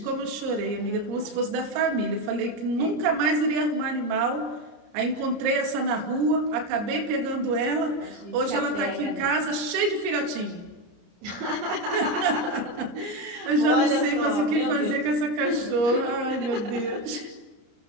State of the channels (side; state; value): left; late; 34 ms